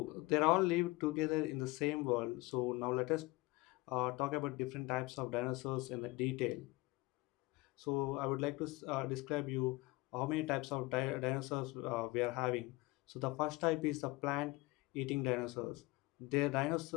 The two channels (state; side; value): quieter; right; 22.1 dB